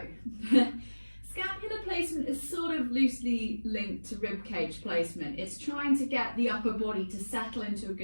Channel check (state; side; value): inverted; both; correlation -1.00